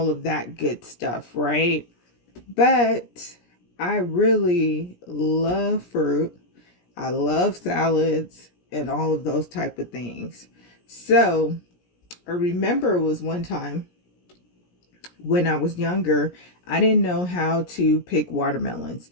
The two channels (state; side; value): late; right; 17 ms